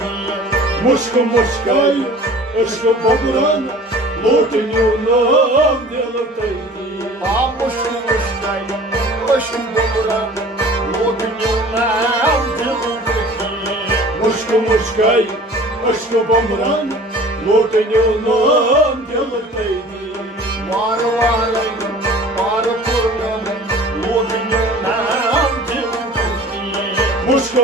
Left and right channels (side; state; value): both; normal; correlation 0.45